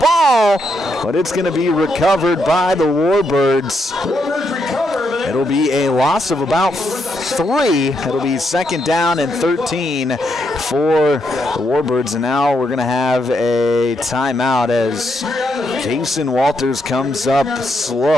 but it's going to be recovered by the Warbirds. It'll be a loss of about 3. It'll be 2nd down and 13 for the Warbirds, and now we're going to have a timeout as Jason Walters comes up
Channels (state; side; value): normal; both; correlation 0.79